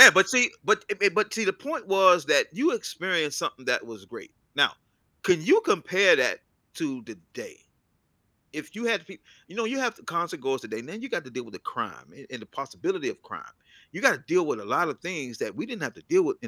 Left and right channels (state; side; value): identical; both; correlation 1.00